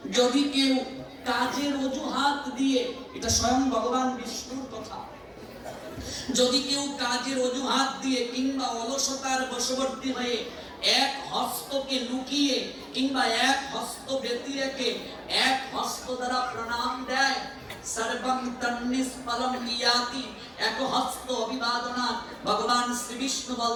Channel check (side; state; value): both; identical; correlation 1.00